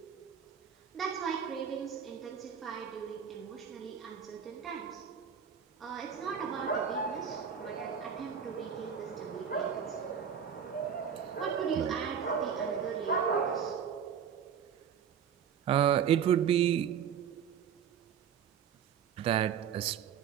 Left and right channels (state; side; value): quieter; left; 7.8 dB